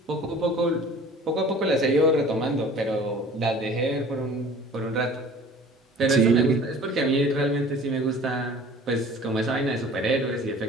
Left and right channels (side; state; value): both; normal; correlation 0.46